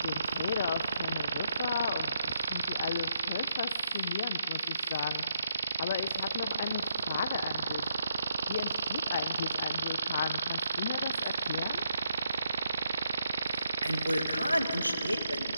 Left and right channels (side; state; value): both; inverted; correlation -0.79